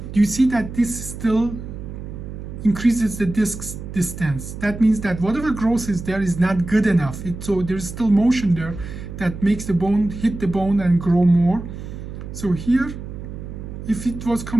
do you see that this still increases the disc distance? That means that whatever growth is there is not good enough. So there's still motion there that makes the bone hit the bone and grow more. So here, if it was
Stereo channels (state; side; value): noise; right; hum, 10 dB below the sound